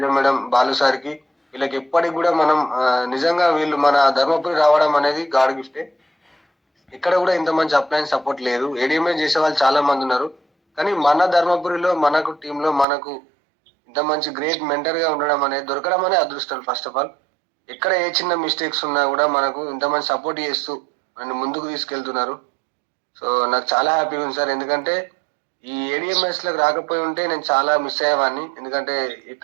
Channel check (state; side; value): drops out; left; at 12.9 s